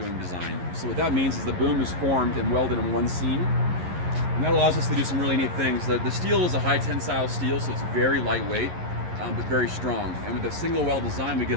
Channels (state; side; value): late; left; 11 ms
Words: design. So what that means is the boom is formed and welded in one seam, and that allows us to do some really neat things. The steel is a high tensile steel, so it's very lightweight, but very strong. And with the single weld design, we get